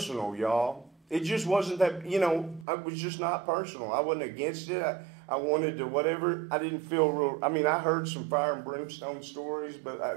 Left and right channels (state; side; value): drops out; left; at 2.7 s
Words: y'all. It just wasn't that, you know, it was just not personal. I wasn't against it. I wanted to whatever. I didn't feel real. I mean, I heard some fire and brimstone stories,